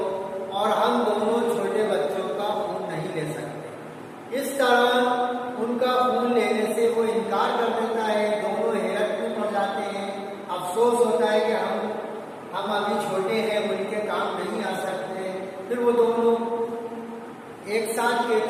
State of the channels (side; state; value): both; identical; correlation 1.00